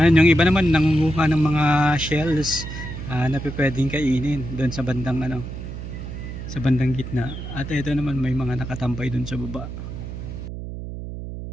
Yung iba naman nangunguha ng mga shells na pwedeng kainin doon sa bandang sa bandang gitna. At ito naman may mga nakatambay doon sa baba.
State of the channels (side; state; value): right; noise; hum, 8 dB below the sound